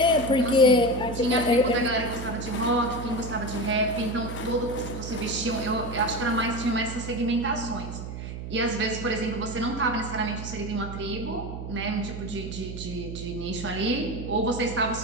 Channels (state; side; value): noise; right; hum, 8 dB below the sound